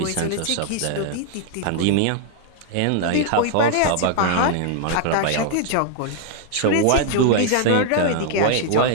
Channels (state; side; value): different; both; correlation 0.00